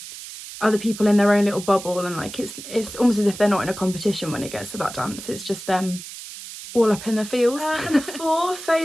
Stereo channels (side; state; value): right; noise; hiss, 12 dB below the sound